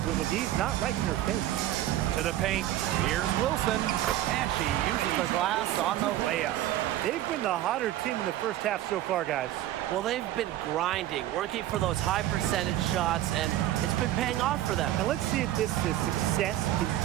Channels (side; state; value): left; quieter; 13.6 dB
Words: when the D's not right in her face. To the paint. Here's Wilson. And she uses the glass on the layup. They've been the hotter team in the first half so far, guys. Well, they've been grinding, working for those high percentage shots, and it's been paying off for them. And let's see if this success